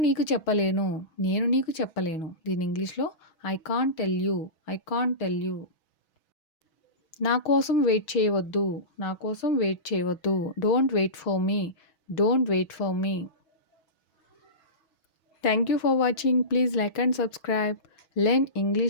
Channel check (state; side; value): late; right; 6.2 ms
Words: చెప్పలేను. నేను నీకు చెప్పలేను. దీన్ని ఇంగ్లీష్‌లో I can't tell you. I can't tell you. నా కోసం వెయిట్ చేయవద్దు. నా కోసం వెయిట్ చేయవద్దు. Don't wait for me. Don't wait for me. Thank you for watching. Please like and subscribe. Learn